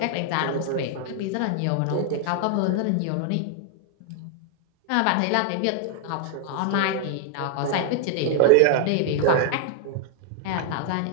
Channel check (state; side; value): different; both; correlation 0.00